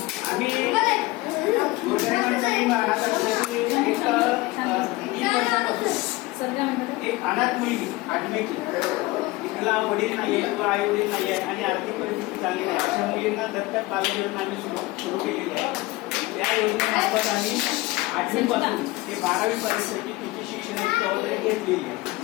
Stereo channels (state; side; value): quieter; right; 20.5 dB